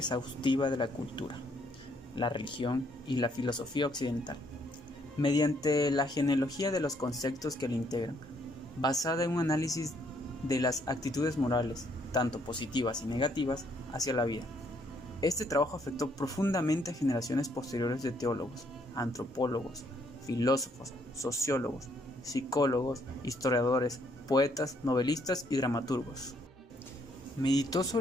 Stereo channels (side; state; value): both; normal; correlation 0.69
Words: de la cultura, la religión y la filosofía occidental, mediante la genealogía de los conceptos que la integran, basada en un análisis de las actitudes morales, tanto positivas y negativas, hacia la vida. Este trabajo afectó profundamente a generaciones posteriores de teólogos, antropólogos, filósofos, sociólogos, psicólogos, historiadores, poetas, novelistas y dramaturgos. Meditó